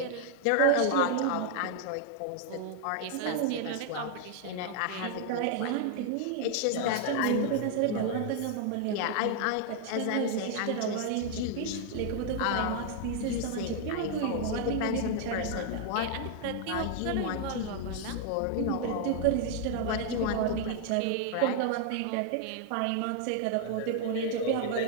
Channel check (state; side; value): different; both; correlation 0.00